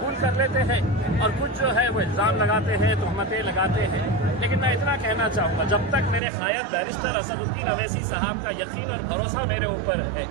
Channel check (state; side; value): drops out; left; at 6.2 s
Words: कर लेते हैं और कुछ जो है वो इल्ज़ाम लगाते हैं, तहमतें लगाते हैं। लेकिन मैं इतना कहना चाहूँगा, जब तक मेरे कायद बैरिस्टर असदुद्दीन अवैसी साहब का यकीन और भरोसा मेरे ऊपर है